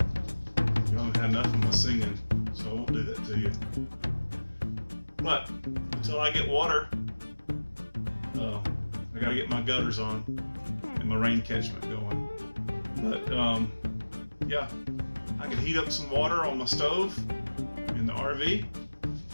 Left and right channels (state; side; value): inverted; both; correlation -1.00